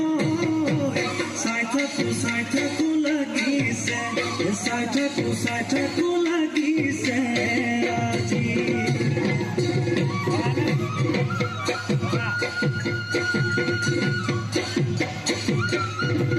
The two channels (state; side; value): identical; both; correlation 1.00